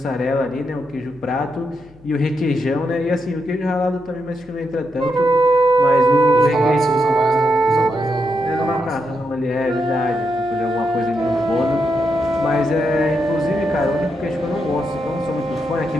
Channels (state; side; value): noise; left; hum, 25 dB below the sound